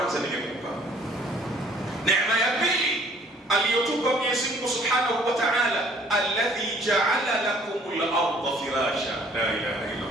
nimekupa. Neema ya pili aliyotupa Mwenyezi Mungu Subhanahu wa Ta'ala, alladhi ja'ala lakumul arda firasha. La ilaha illa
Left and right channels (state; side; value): normal; both; correlation 0.57